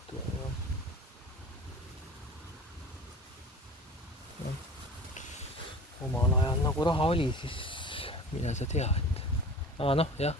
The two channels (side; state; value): both; normal; correlation 0.40